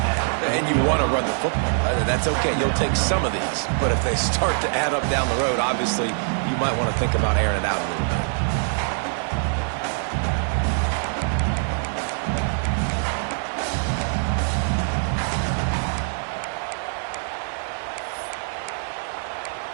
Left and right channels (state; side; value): silent; left; 63 dB below the other